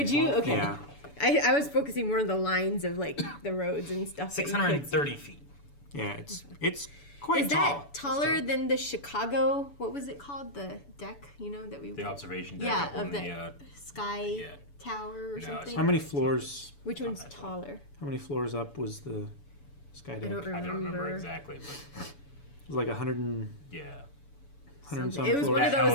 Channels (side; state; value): right; late; 7.0 ms